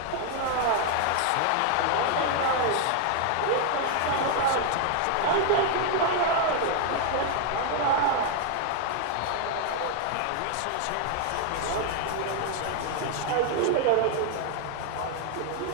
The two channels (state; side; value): different; both; correlation 0.00